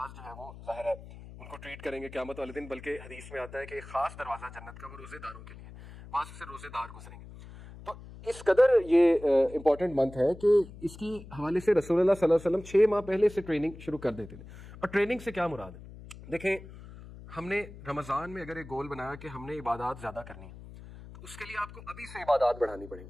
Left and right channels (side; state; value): left; noise; hum, 16 dB below the sound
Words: جو ہے وہ ظاہر ہے ان کو ٹریٹ کریں گے قیامت والے دن. بلکہ حدیث میں آتا ہے کہ ایک خاص دروازہ جنت کا وہ روزے داروں کے لیے، وہاں سے روزے دار گزریں گے. تو اس قدر یہ امپورٹنٹ منتھ ہے کہ اس کی حوالے سے رسول اللہ صلی اللہ علیہ وسلم 6 ماہ پہلے سے ٹریننگ شروع کر دیتے تھے. اور ٹریننگ سے کیا مراد ہے؟ دیکھیں، ہم نے رمضان میں اگر ایک گول بنایا کہ ہم نے عبادات زیادہ کرنی ہے، تو اس کے لیے آپ کو ابھی سے عبادات بڑھانی پڑیں گی.